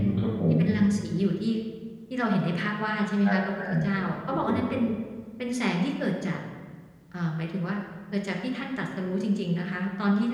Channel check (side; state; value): both; identical; correlation 1.00